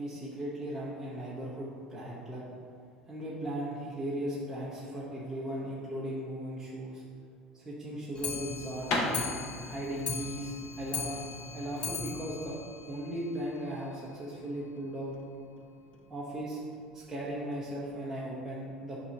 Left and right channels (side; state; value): both; normal; correlation 0.46